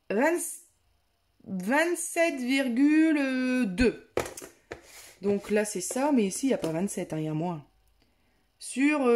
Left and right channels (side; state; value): both; identical; correlation 1.00